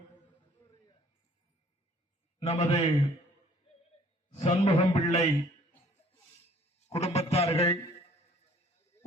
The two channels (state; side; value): normal; both; correlation 0.56